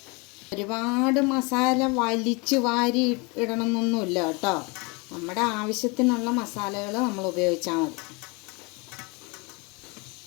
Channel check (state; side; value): quieter; right; 28.9 dB